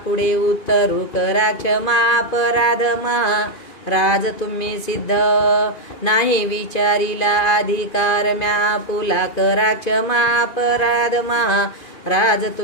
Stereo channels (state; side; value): late; right; 2.5 ms